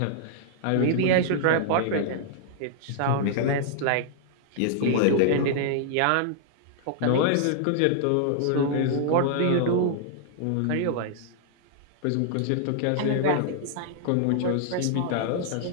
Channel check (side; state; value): both; different; correlation -0.01